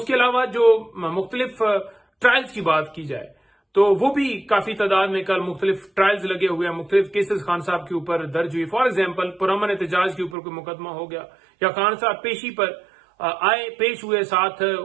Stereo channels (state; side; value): drops out; left; at 10.4 s